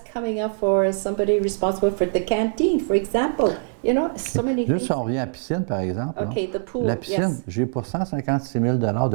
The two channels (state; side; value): silent; left; digital silence